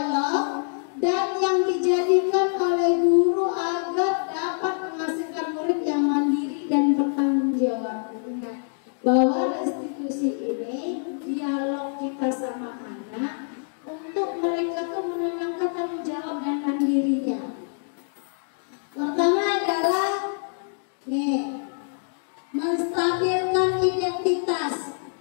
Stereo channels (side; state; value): right; silent; digital silence